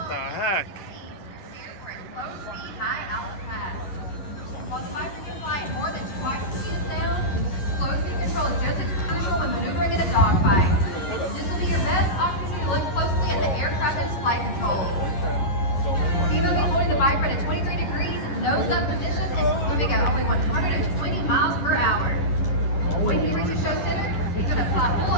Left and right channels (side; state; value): right; late; 11 ms